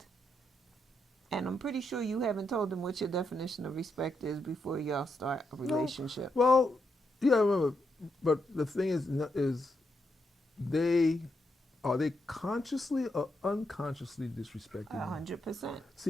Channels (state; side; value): normal; both; correlation 0.81